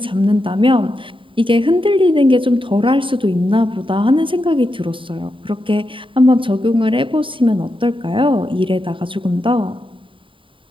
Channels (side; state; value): left; late; 0.25 ms